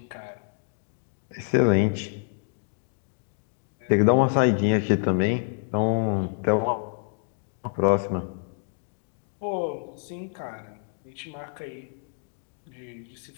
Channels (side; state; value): right; silent; 60 dB below the other